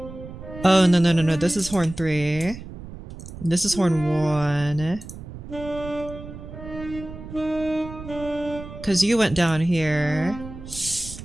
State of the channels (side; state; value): right; noise; rumble, 13 dB below the sound